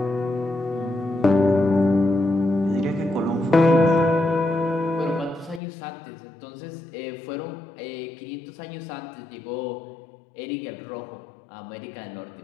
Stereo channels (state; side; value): drops out; right; at 5.6 s